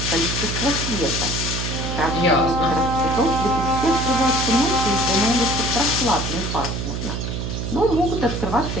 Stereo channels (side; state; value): right; noise; hum, 3 dB below the sound